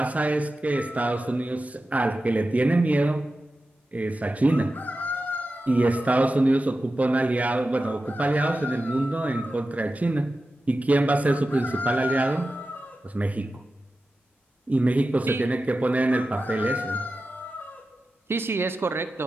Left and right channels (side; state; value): both; normal; correlation 0.93